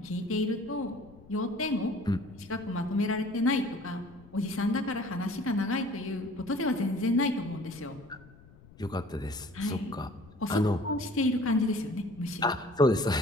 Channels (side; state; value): left; noise; rumble, 23 dB below the sound